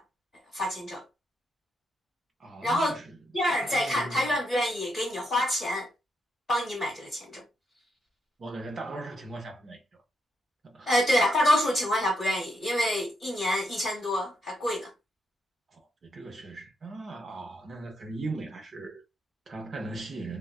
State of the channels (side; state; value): both; normal; correlation 0.80